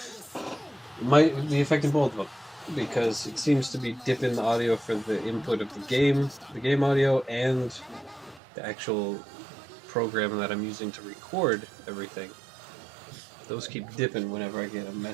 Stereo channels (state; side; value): drops out; left; at 8.4 s